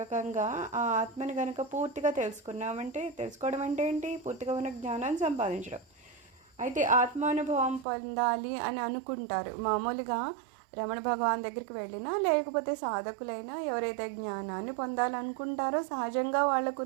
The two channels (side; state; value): left; drops out; at 7.9 s